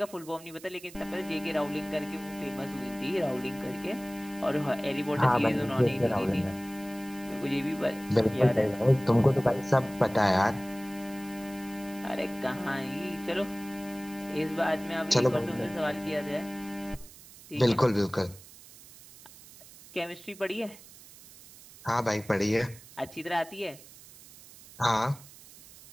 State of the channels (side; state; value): right; noise; hiss, 20 dB below the sound